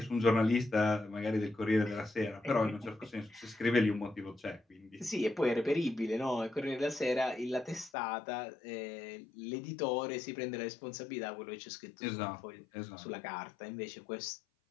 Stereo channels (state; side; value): drops out; right; at 7.9 s